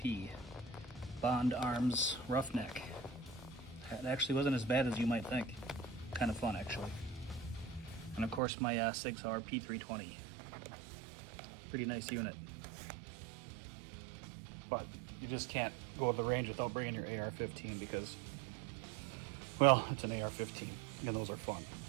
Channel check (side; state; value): left; drops out; at 8.4 s